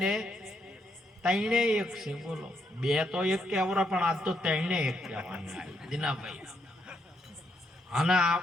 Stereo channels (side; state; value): both; normal; correlation 0.77